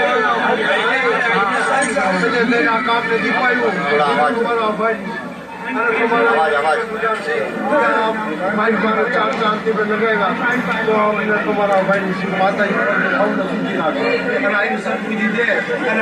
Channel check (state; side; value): identical; both; correlation 1.00